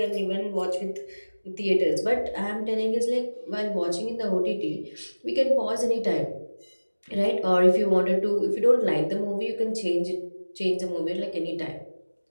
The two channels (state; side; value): inverted; both; correlation -1.00